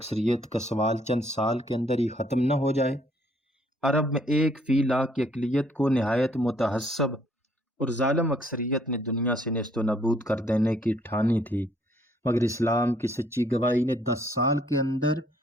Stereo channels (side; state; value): both; normal; correlation 0.65